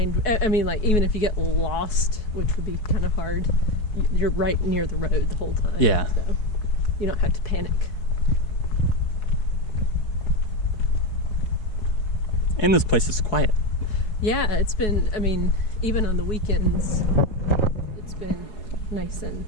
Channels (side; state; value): right; late; 4.7 ms